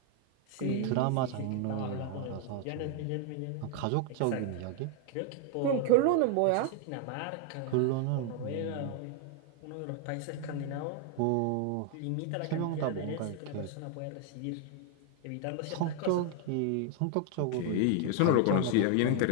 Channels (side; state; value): both; different; correlation 0.00